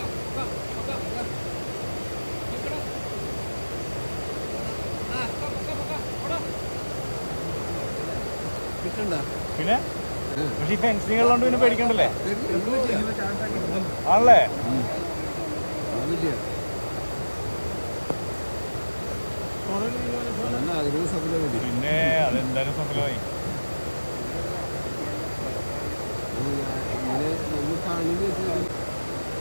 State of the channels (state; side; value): inverted; both; correlation -1.00